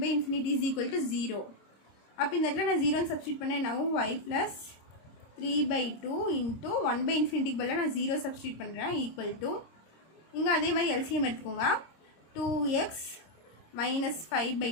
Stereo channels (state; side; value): late; right; 26 ms